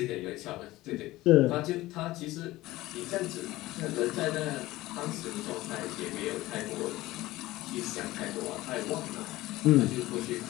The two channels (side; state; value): right; quieter; 17.8 dB